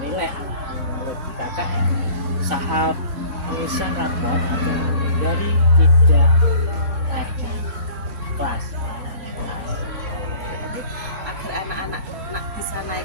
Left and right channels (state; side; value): late; left; 3.1 ms